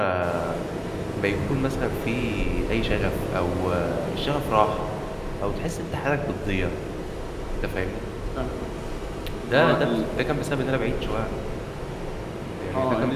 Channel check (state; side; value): identical; both; correlation 1.00